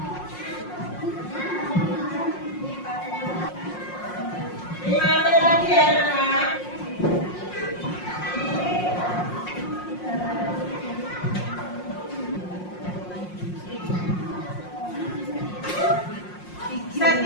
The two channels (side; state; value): right; late; 5.6 ms